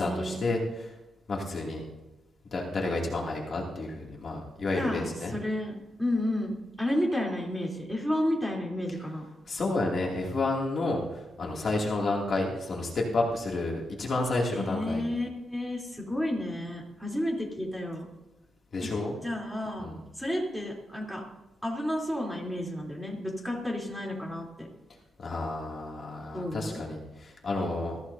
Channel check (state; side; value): normal; both; correlation 0.87